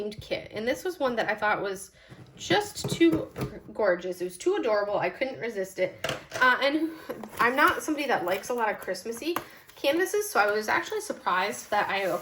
kit. And this was one that I thought was just too gorgeous. It was too adorable. I couldn't resist it. And I'm not somebody that likes a lot of Christmassy canvases, so I was actually surprised that I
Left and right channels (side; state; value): both; identical; correlation 1.00